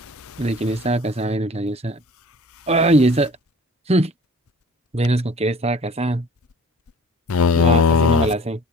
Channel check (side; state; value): both; normal; correlation 0.46